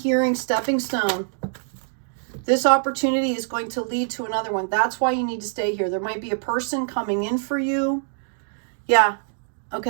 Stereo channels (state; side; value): silent; left; digital silence